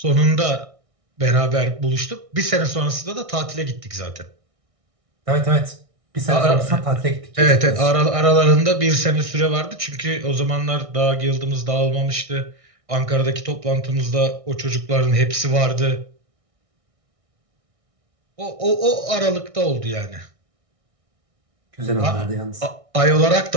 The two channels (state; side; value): late; left; 1.6 ms